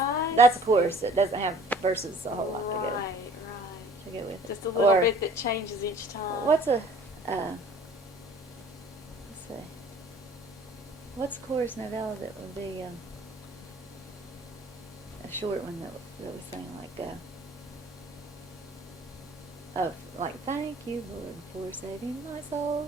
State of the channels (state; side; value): normal; both; correlation 0.51